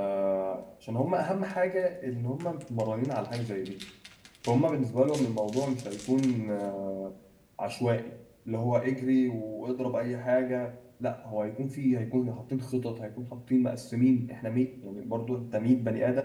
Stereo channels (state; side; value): identical; both; correlation 1.00